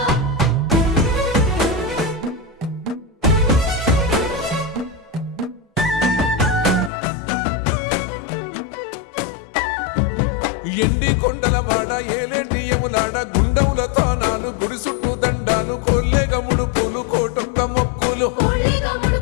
ఎండి కొండల వాడ ఏలేటి యములాడ గుండములతో నాలు గుడి చుట్టూ దండాలు కొల్లేగ ముడుపులు కోటొక్క మొక్కులు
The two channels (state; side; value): drops out; right; at 6.9 s